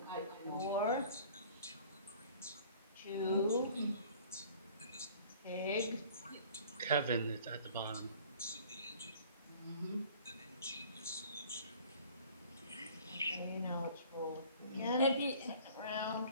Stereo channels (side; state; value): both; inverted; correlation -0.49